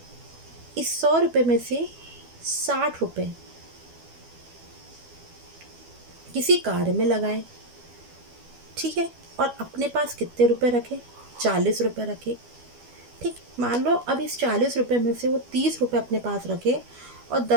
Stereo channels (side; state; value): left; late; 12 ms